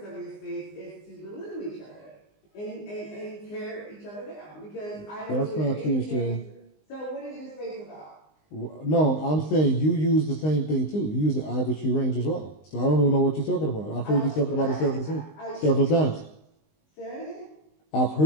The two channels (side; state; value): right; late; 19 ms